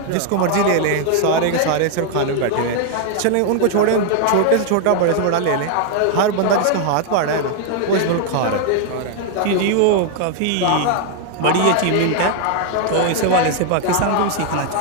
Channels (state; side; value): different; both; correlation 0.00